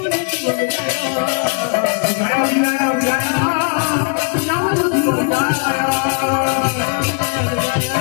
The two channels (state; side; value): quieter; right; 36.9 dB